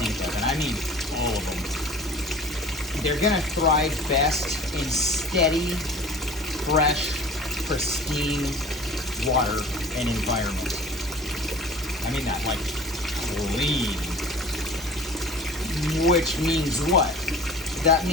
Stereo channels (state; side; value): normal; both; correlation 0.43